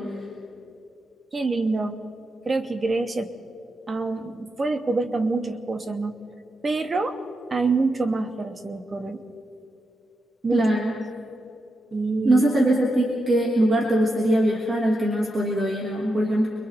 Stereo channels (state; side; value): normal; both; correlation 0.86